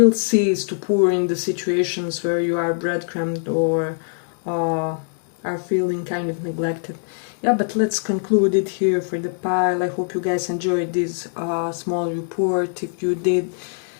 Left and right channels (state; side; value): silent; right; digital silence